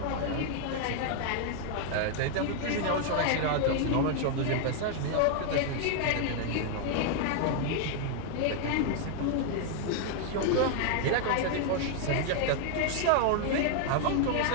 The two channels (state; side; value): different; both; correlation 0.00